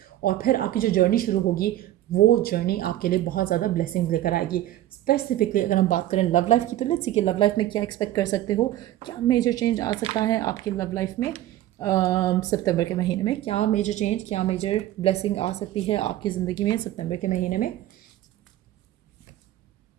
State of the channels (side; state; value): left; quieter; 13.9 dB